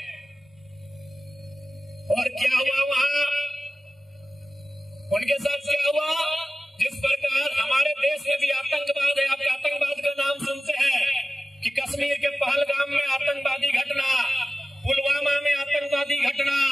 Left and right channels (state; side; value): normal; both; correlation 0.95